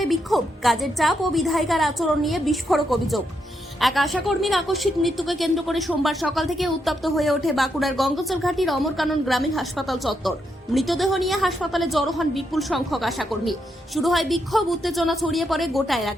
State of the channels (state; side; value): normal; both; correlation 0.81